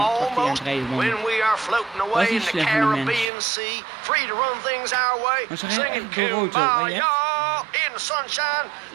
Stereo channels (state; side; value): drops out; left; at 3.2 s